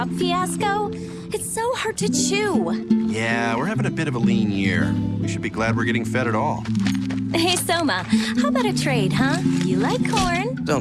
fiasco? It's so hard to chew. Yeah, we're having a bit of a lean year. We should be glad we're getting fed at all. Hey, Soma, how about a trade, huh? You like corn?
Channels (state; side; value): identical; both; correlation 1.00